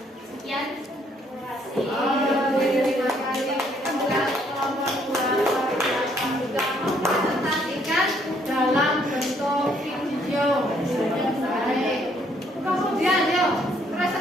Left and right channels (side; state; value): both; normal; correlation 0.67